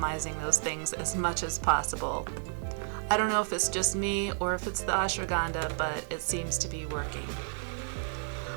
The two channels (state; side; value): silent; left; digital silence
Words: those things as much as possible. I don't know if it's just me or if it's the ashwagandha, but it seems to be working.